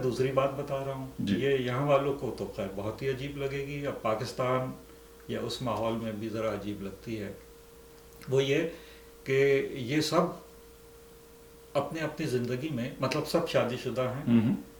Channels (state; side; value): identical; both; correlation 1.00